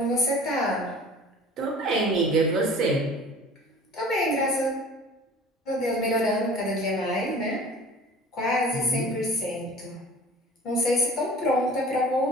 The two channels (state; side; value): normal; both; correlation 0.44